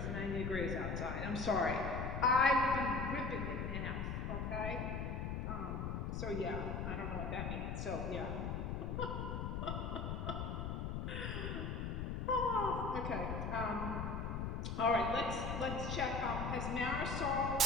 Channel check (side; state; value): left; noise; rumble, 2 dB below the sound